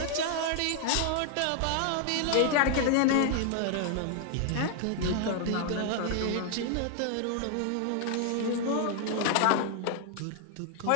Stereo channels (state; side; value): different; both; correlation 0.00